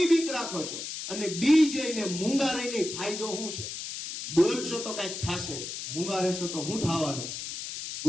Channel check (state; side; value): noise; left; hiss, 7 dB below the sound